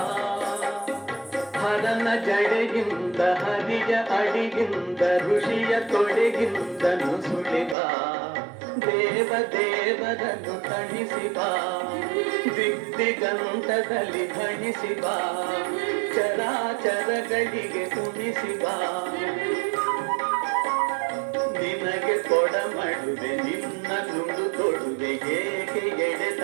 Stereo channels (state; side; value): drops out; left; at 7.8 s